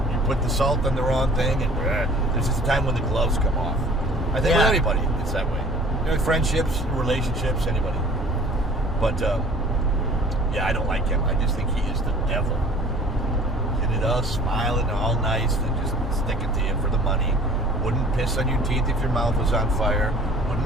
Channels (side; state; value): both; normal; correlation 0.49